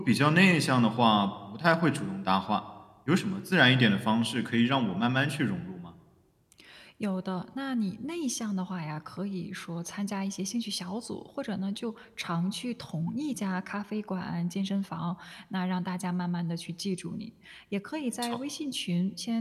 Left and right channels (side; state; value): both; identical; correlation 1.00